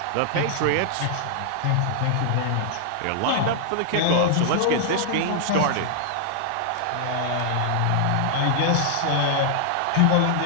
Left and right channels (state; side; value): different; both; correlation -0.01